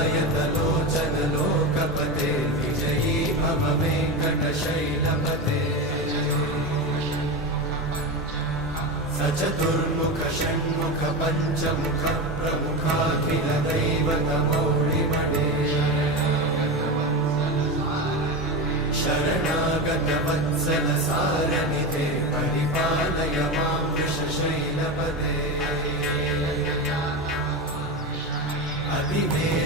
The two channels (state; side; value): normal; both; correlation 0.19